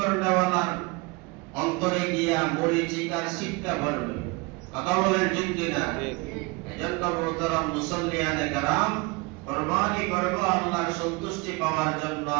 অন্তরে গিয়া মরিচিকার শিক্ষা পড়বে। কথা বলেন ঠিক কিনা? এজন্য মোহতারাম মুসল্লিয়ানে কেরাম, কুরবানি করব আল্লাহর সন্তুষ্টি পাওয়ার জন্য।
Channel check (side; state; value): left; quieter; 26.4 dB